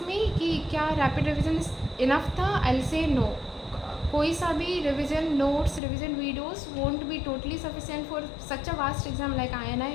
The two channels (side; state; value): right; drops out; at 5.8 s